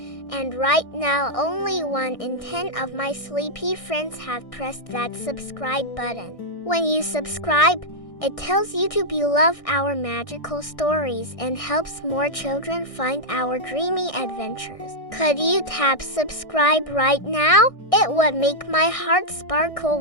and right now only 1 in 10 of my sleepy friends have pressed that subscribe button. When you subscribe, it tells YouTube you love our magical stories and helps more children find our dreamy adventures. Could you tap subscribe right now? It would make my heart sparkle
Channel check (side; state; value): right; late; 1.6 ms